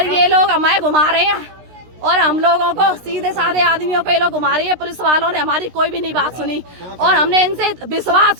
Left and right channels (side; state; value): left; late; 16 ms